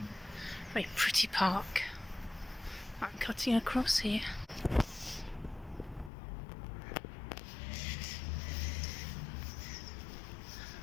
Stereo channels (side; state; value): right; drops out; at 6.1 s